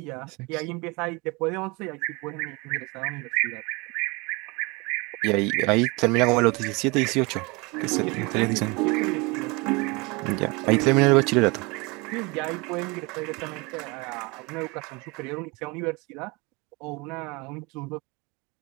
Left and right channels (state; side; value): quieter; left; 26.9 dB